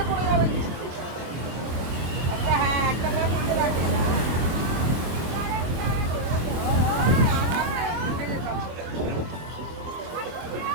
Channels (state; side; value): late; left; 24 ms